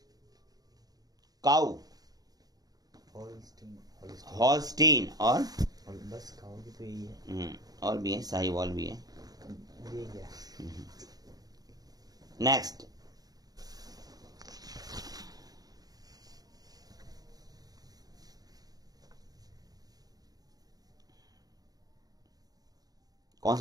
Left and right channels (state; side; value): late; left; 0.18 ms